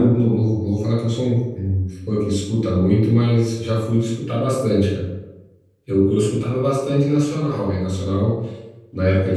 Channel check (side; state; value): both; identical; correlation 1.00